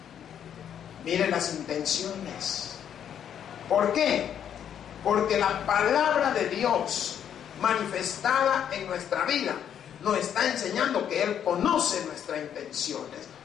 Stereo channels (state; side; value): quieter; right; 9.2 dB